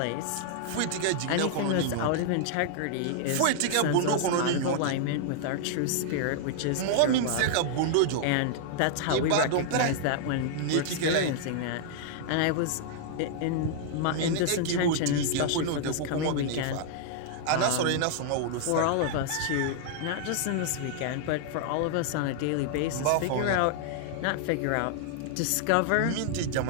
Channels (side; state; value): both; different; correlation -0.01